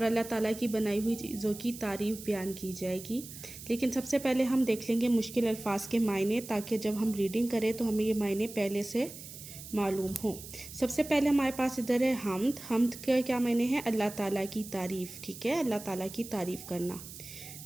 अल्लाह ताला की बनाई हुई चीज़ों की तारीफ़ बयान की जाएगी। लेकिन सबसे पहले हम देख लेंगे मुश्किल अल्फाज के मायने, ताकि जब हम रीडिंग करें तो हमें ये मायने पहले से मालूम हो। सबसे पहले हमारे पास इधर है हम्द। हम्द के क्या मायने हैं? अल्लाह ताला की तारीफ़। ठीक है, अल्लाह ताला की तारीफ़ करना।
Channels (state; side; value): noise; right; hiss, 14 dB below the sound